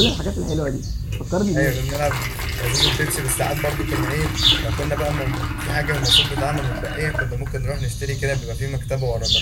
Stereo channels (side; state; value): both; identical; correlation 1.00